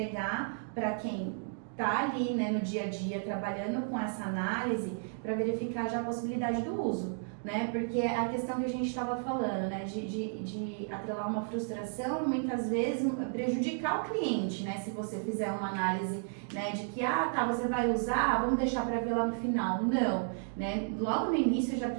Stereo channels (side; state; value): left; silent; digital silence